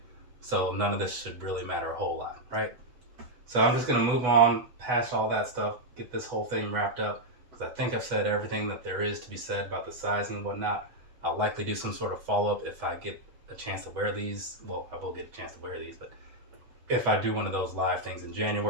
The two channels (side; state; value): left; late; 8.1 ms